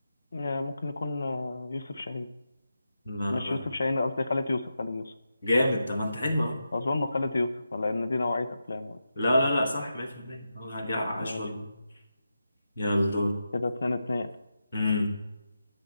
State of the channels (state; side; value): inverted; both; correlation -0.88